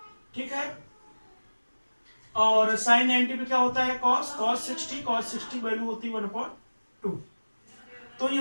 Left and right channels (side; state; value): both; inverted; correlation -1.00